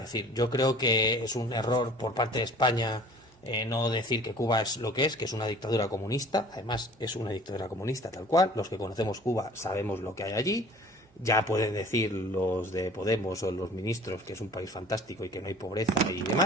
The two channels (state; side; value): normal; both; correlation 0.47